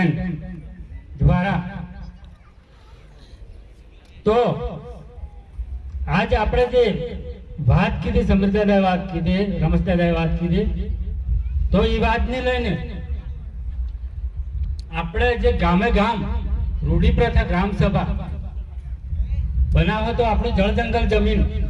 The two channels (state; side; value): identical; both; correlation 1.00